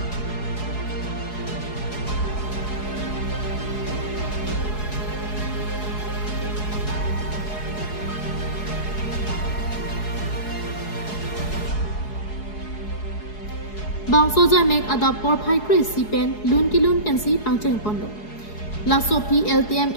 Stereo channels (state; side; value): late; right; 4.7 ms